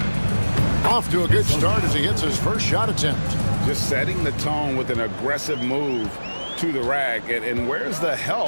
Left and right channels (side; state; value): both; inverted; correlation -1.00